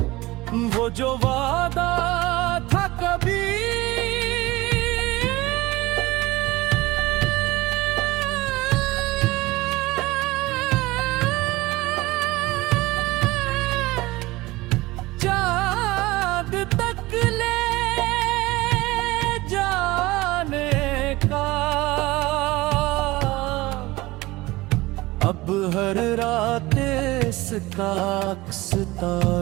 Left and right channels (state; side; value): quieter; left; 20.0 dB